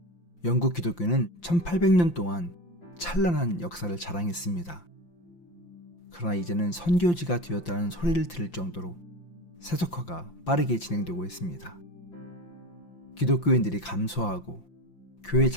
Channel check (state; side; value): late; right; 5.8 ms